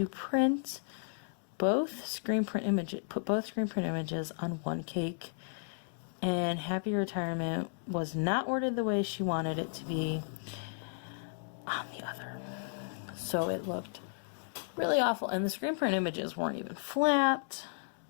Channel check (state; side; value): silent; right; digital silence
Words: print both screen print images on one cake, and happy retirement was not worded the way she wanted it to be on the other. So it looked really awful, and the screen print images weren't even flat.